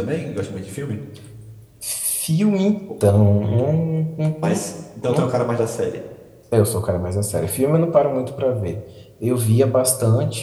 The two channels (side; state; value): both; identical; correlation 1.00